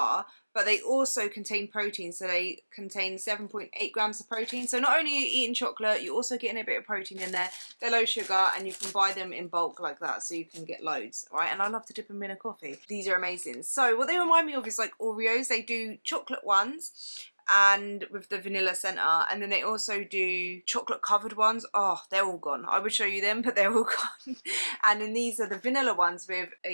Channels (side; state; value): both; inverted; correlation -1.00